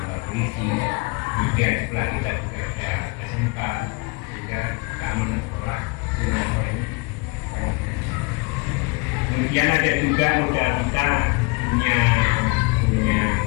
polisi, juga setelah kita juga ada SMK, juga keamanan sekolah dengan sekolah ini. Kemudian ada juga modal kita punya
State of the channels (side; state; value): right; quieter; 27.7 dB